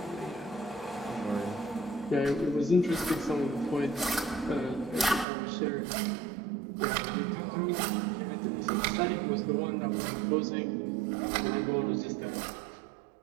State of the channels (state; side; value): drops out; left; at 5.2 s